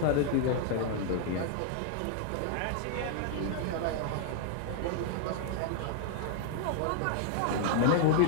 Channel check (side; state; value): both; different; correlation 0.00